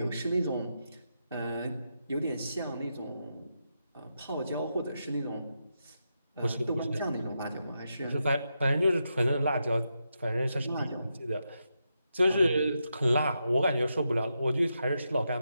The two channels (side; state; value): both; inverted; correlation -0.85